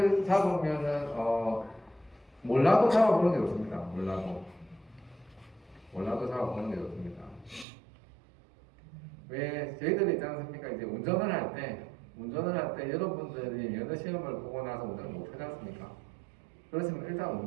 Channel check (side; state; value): left; drops out; at 7.7 s